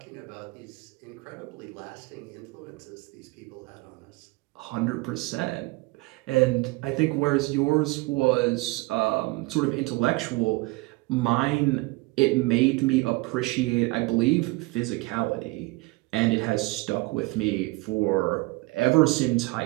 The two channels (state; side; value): quieter; left; 23.5 dB